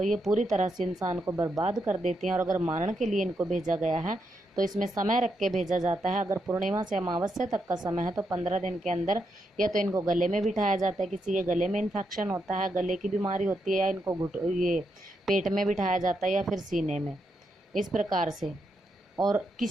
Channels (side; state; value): both; normal; correlation 0.82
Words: ये पूरी तरह से इंसान को बर्बाद कर देती हैं। और अगर मारण के लिए इनको भेजा गया है तो इसमें समय रख के भेजा जाता है। अगर पूर्णिमा से अमावस्या तक का समय है तो 15 दिन के अंदर या तो इनको गले में बिठाया जाता है, किसी के गले में इन्फेक्शन होता है, गले की बीमारी होती है, या इनको ये पेट में बिठाया जाता है या फिर सीने में, इस प्रकार से। और